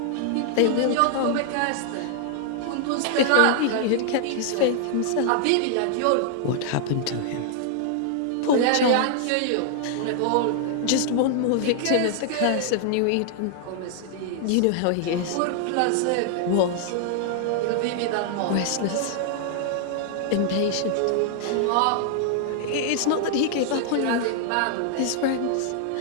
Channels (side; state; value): both; different; correlation 0.00